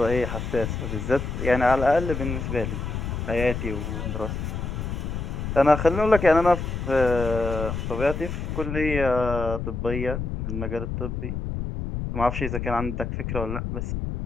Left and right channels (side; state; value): left; noise; rumble, 4 dB below the sound